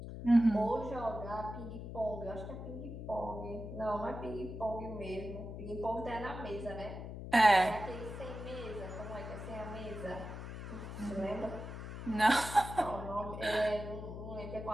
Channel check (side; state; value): left; noise; hum, 8 dB below the sound